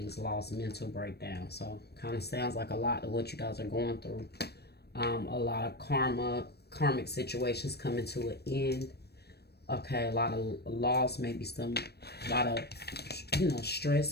loss, mental breakdown. So kind of sounds like a lot of what you guys are going through. A lot of karmic situations coming to an end. Okay, a lot of loss, maybe a lot of, you know,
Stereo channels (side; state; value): right; late; 0.47 ms